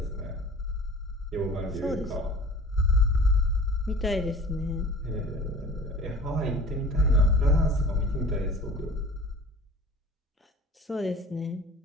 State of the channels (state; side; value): normal; both; correlation 0.44